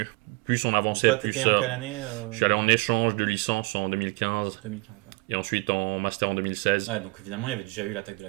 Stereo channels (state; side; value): quieter; left; 26.1 dB